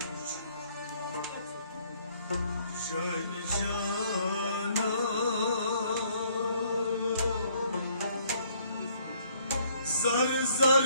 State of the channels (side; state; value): both; inverted; correlation -0.64